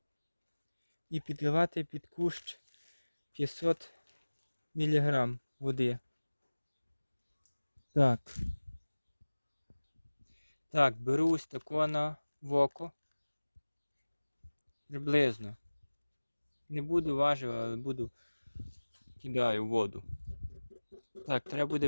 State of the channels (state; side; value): inverted; both; correlation -1.00